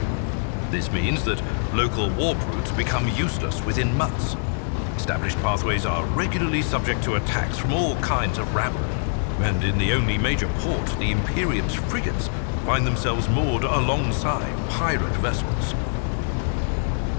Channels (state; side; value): silent; right; digital silence